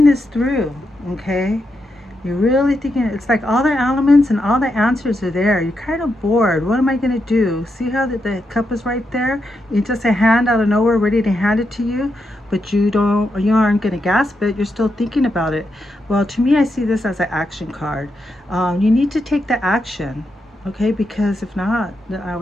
this through. Okay, you're really thinking, it's like all the elements and all the answers are there. You're kind of bored. What am I going to do? See how the cup is right there? It's just a hand out of nowhere ready to hand it to you, but you aren't going to grasp it. You're still thinking about it. Well, to me, I see this as an action card. You need to take the action. Okay, because if not, I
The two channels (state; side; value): normal; both; correlation 0.84